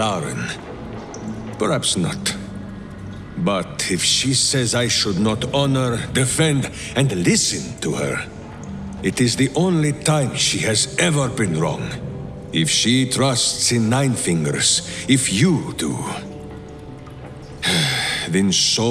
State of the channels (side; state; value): both; identical; correlation 1.00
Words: Perhaps not. But if she says I should not honor, defend, and listen to her, it is the only time she has ever been wrong. If she trusts in Nine Fingers, if you do, then